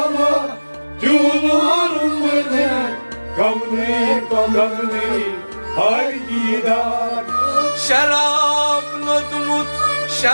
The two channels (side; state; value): both; inverted; correlation -1.00